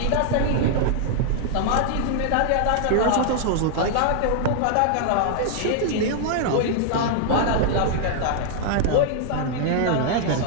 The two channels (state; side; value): different; both; correlation -0.01